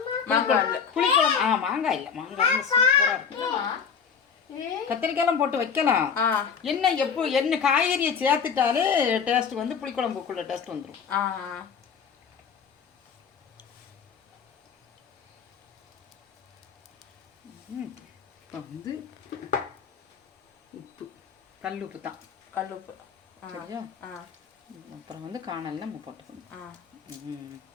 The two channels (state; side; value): quieter; right; 6.7 dB